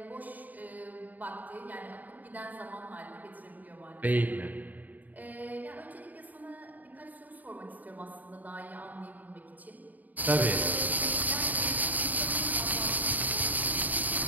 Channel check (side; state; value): left; late; 0.081 ms